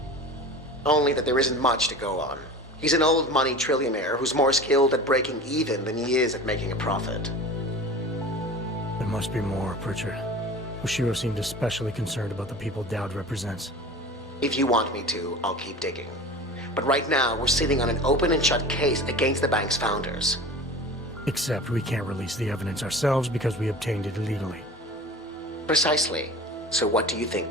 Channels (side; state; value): both; normal; correlation 0.37